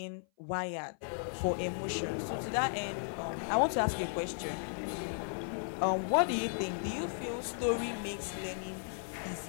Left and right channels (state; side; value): silent; right; 54 dB below the other